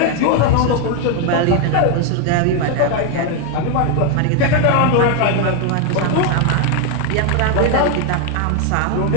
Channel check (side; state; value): both; different; correlation 0.01